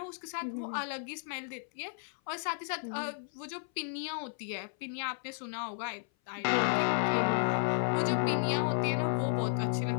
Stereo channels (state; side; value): silent; right; 56 dB below the other